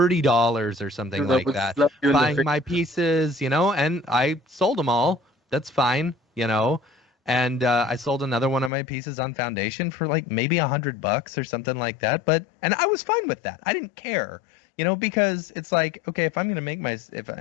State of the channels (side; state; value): right; drops out; at 8.7 s